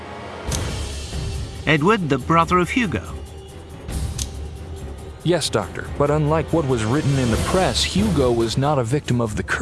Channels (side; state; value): both; identical; correlation 1.00